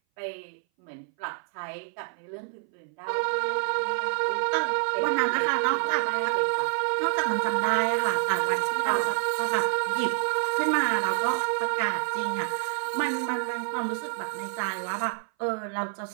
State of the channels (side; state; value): left; silent; 59 dB below the other